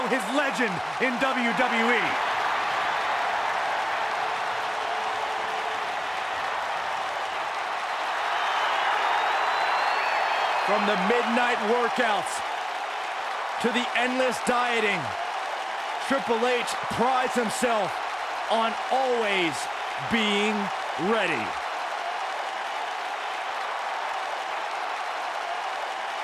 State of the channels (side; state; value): both; identical; correlation 1.00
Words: his legend in WWE. From the midnight workouts to the endless dieting, Triple H prides himself on always being ready.